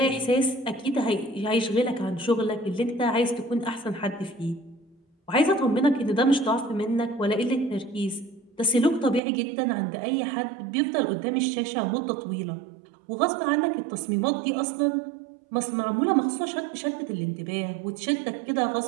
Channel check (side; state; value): left; drops out; at 9.2 s